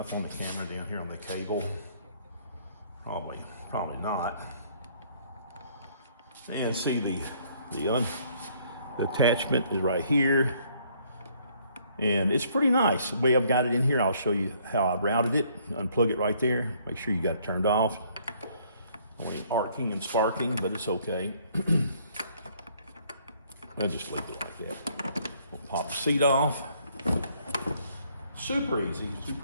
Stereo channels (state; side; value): inverted; both; correlation -0.63